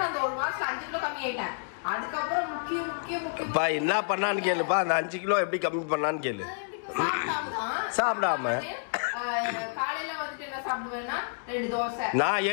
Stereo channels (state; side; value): silent; right; digital silence